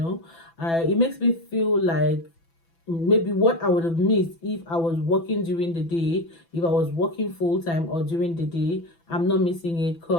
makes me feel like maybe what I would have missed if I was working during the day, if I was working full time or during the day, I'm not missing it,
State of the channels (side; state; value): right; late; 6.0 ms